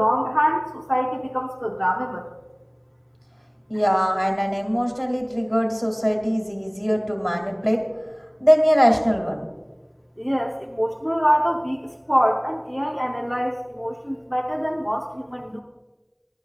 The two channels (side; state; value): both; identical; correlation 1.00